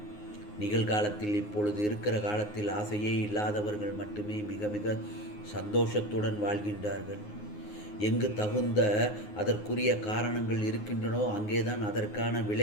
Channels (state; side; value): late; right; 9.6 ms